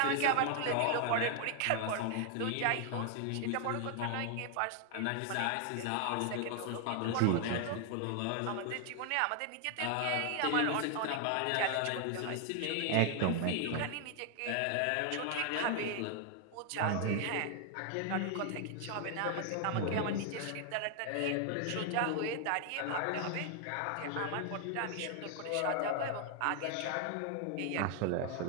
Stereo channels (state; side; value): different; both; correlation 0.00